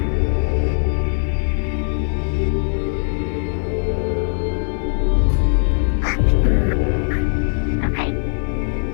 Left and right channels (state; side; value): silent; right; 62 dB below the other